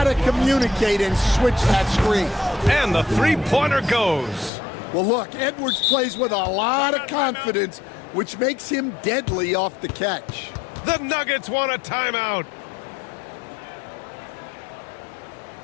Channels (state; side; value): drops out; right; at 4.5 s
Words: communicate and switch that screen. And the three-pointer goes. Well, look, Edwards plays with a lot of confidence, which makes him deadly off the catch. The Nuggets want a timeout.